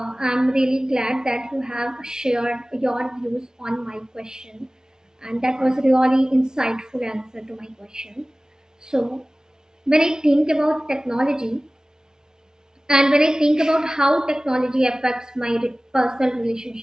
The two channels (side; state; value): both; normal; correlation 0.98